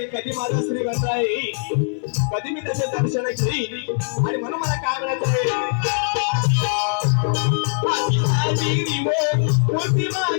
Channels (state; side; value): silent; right; 58 dB below the other